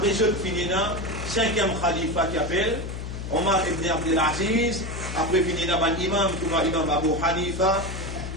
ce finina, cinquième khalifa qui appelle, Omar ibn Abdel Aziz, après finina ban imam, comme imam Abu Hanifa,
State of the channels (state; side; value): noise; left; hum, 7 dB below the sound